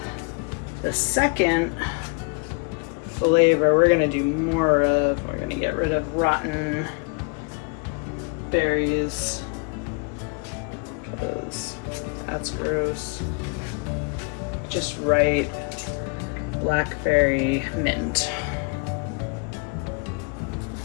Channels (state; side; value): quieter; right; 33.6 dB